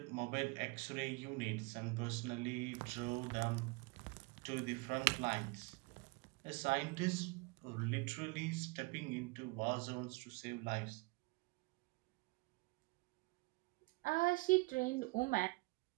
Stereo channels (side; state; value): left; quieter; 26.2 dB